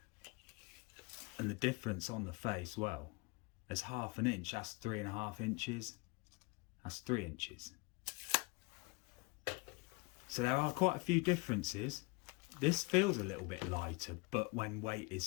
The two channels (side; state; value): right; quieter; 26.8 dB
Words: And the difference on the face, well, there's half an inch, that's 3.5 inches, that's 3 inches. So there are quite a few differences. This feels a little bit lighter, but when weight is